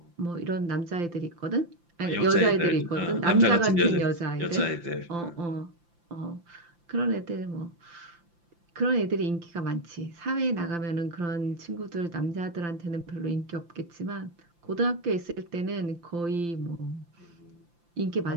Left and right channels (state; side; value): late; left; 5.8 ms